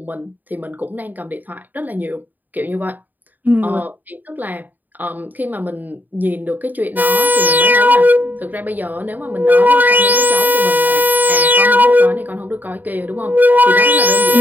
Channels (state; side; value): late; left; 0.086 ms